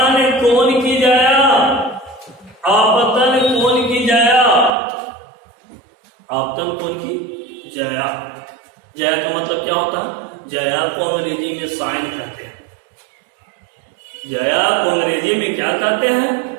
कौन की जाया, आपतन कौन की जाया, आपतन कौन की जाया। जाया का मतलब क्या होता है? जाया को अंग्रेजी में साइन कहते हैं। जाया को अंग्रेजी में क्या कहते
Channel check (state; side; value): drops out; left; at 4.7 s